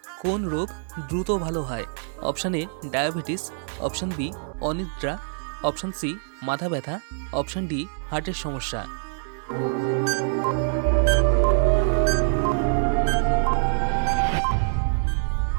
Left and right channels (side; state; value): left; silent; digital silence